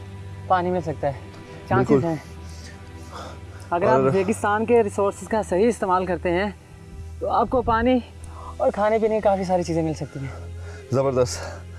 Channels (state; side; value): identical; both; correlation 1.00